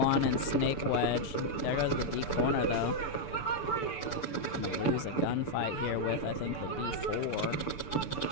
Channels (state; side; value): late; right; 6.8 ms